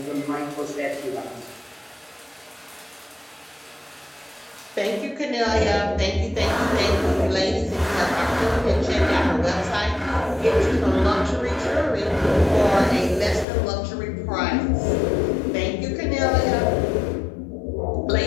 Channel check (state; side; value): drops out; right; at 13.5 s